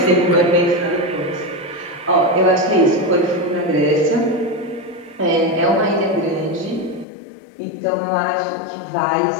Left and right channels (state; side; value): drops out; right; at 7.1 s